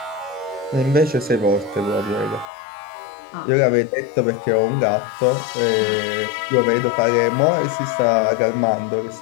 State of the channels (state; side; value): drops out; right; at 2.5 s